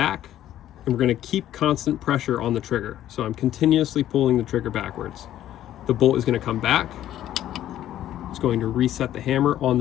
and we're going to keep constant pressure on the trigger. So I'm continuously pulling the trigger backwards. The bolt is going to come back. It's going to reset the hammer on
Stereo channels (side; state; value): right; quieter; 12.4 dB